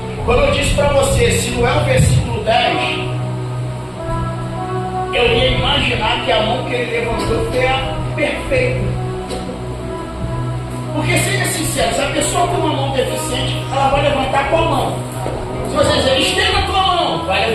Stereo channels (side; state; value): both; identical; correlation 1.00